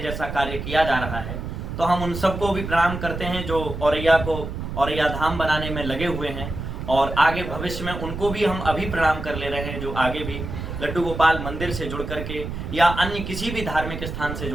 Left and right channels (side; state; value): right; noise; rumble, 6 dB below the sound